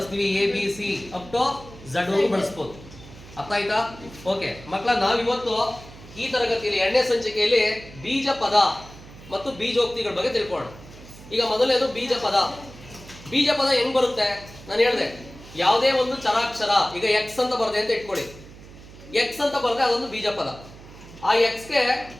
ABC ಅಪ್ ಟು Z ವರೆಗೂ ಬಳಸ್ಬೋದು. ಅರ್ಥ ಆಯ್ತಾ? ಓಕೆ ಮಕ್ಕಳ, ನಾವಿವತ್ತು ಈ ತರಗತಿಯಲ್ಲಿ ಎರಡನೇ ಸಂಚಿಕೆಯಲ್ಲಿ ಬೀಜ ಪದ ಮತ್ತು ಬೀಜೋಕ್ತಿಗಳ ಬಗ್ಗೆ ತಿಳ್ಕೊಳ್ಳೋಣ. ಈಗ ಮೊದಲನೇದು ಬೀಜ ಪದ. ಬೀಜ ಪದ ಹೆಂಗ್ ಬರುತ್ತೆ? ನಾನು ಹೇಳಿದೆ, ಯಾವುದೇ ಒಂದು ಚರಾಕ್ಷರ, ಈಗ ಎಕ್ಸ್ ಅಂತ ಬರದೆ ಅಂತ ಇಟ್ಕೊಳ್ಳಿ. ಎಕ್ಸ್ ಅಂತ ಬರದೆ ಅದೊಂದು ಬೀಜ ಪದ. ಆ ಎಕ್ಸ್ಗೆ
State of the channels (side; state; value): right; noise; hum, 18 dB below the sound